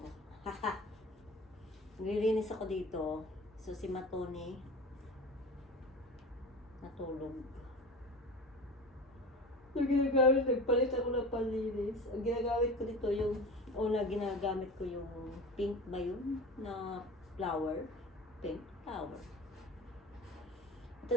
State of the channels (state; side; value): normal; both; correlation 0.33